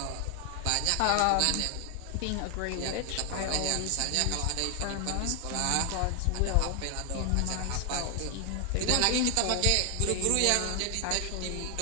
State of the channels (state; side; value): different; both; correlation 0.00